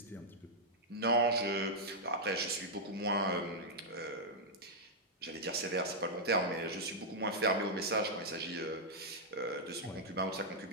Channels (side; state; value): both; normal; correlation -0.06